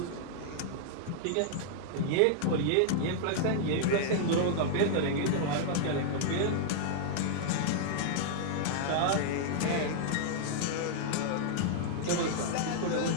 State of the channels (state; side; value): different; both; correlation -0.01